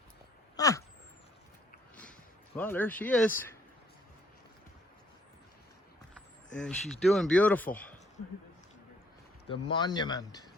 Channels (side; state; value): both; normal; correlation 0.64